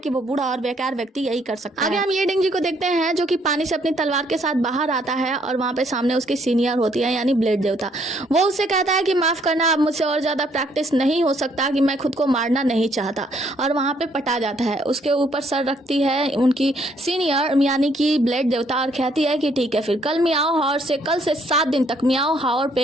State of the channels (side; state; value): both; normal; correlation 0.68